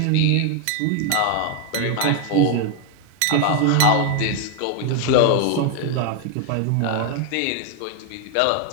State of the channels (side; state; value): both; different; correlation 0.01